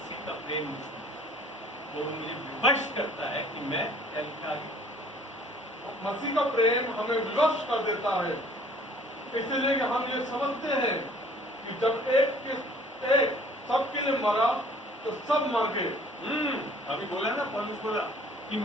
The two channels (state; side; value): normal; both; correlation 0.54